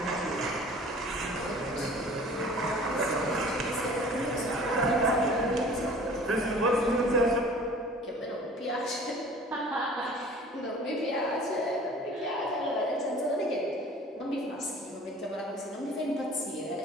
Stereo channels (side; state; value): both; normal; correlation 0.47